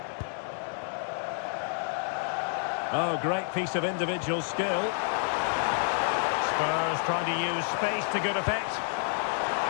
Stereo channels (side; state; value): right; silent; 58 dB below the other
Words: Oh, great piece of individual skill. Spurs trying to use space to good effect.